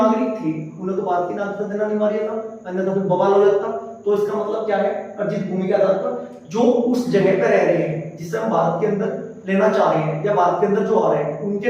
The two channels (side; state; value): both; identical; correlation 1.00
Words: थे उन्हें तो भारत की नागरिकता देना अनिवार्य था, अन्यथा फिर बवाल हो जाता। तो इसका मतलब क्या है, अर्जित भूमि के आधार पर जो उस जगह पर रह रहे हैं जिसे हम भारत के अंदर लेना चाह रहे हैं या भारत के अंदर जो आ रहे हैं